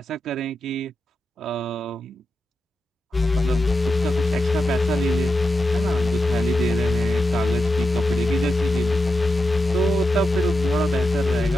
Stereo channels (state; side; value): normal; both; correlation 0.88